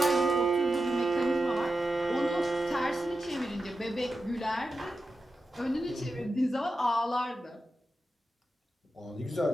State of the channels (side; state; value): both; normal; correlation 0.90